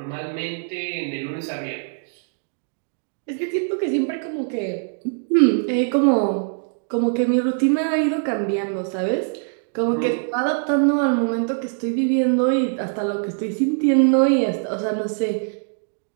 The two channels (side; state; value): left; silent; digital silence